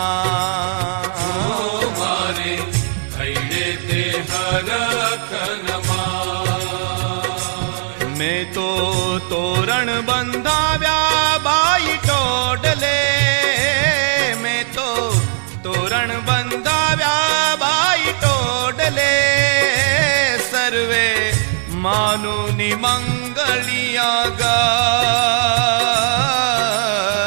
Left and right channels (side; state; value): left; silent; digital silence